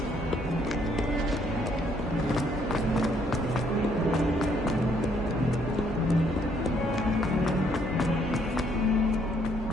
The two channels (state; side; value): normal; both; correlation 0.68